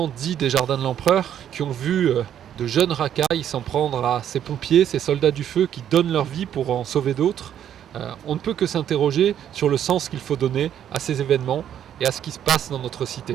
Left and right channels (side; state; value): left; quieter; 10.0 dB